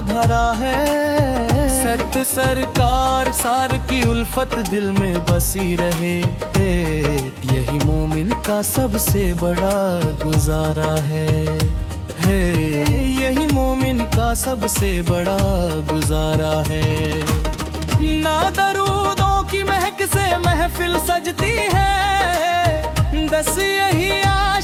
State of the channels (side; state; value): both; identical; correlation 1.00